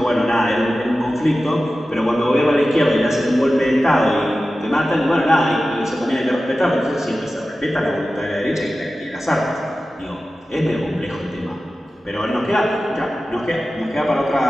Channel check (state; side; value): normal; both; correlation 0.94